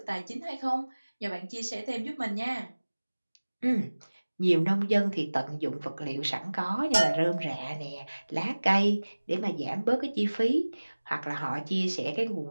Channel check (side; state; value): both; inverted; correlation -1.00